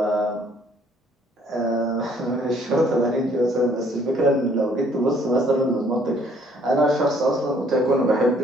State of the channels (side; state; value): both; normal; correlation 0.62